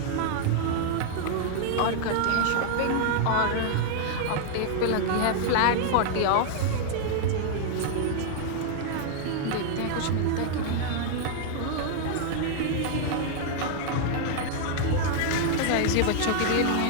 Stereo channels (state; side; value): different; both; correlation -0.01